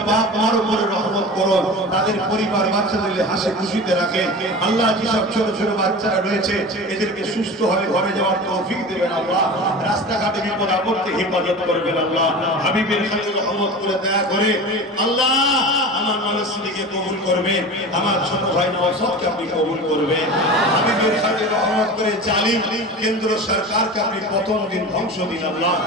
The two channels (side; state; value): both; normal; correlation 0.33